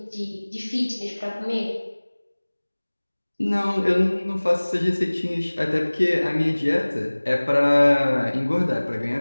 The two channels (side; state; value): both; inverted; correlation -1.00